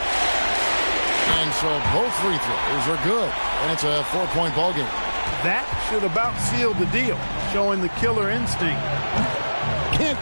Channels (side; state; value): both; inverted; correlation -1.00